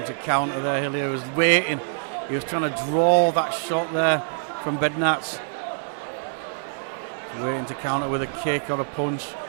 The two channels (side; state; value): left; silent; digital silence